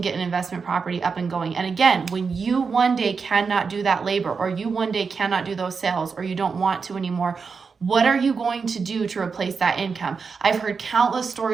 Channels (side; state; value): left; quieter; 5.3 dB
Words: get an investment property up and going. And again, when you one day cannot do that labor, or you one day cannot do those sales, or you don't want to anymore, what are you going to do to replace that income? I've heard countless